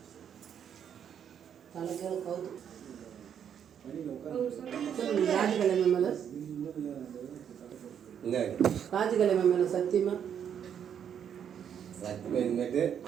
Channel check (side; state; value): left; quieter; 8.6 dB